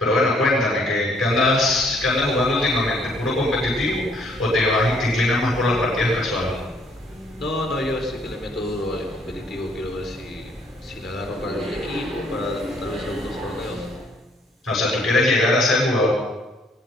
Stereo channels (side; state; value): both; normal; correlation 0.65